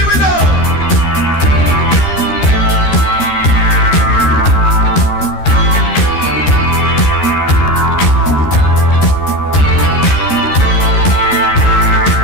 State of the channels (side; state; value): right; late; 13 ms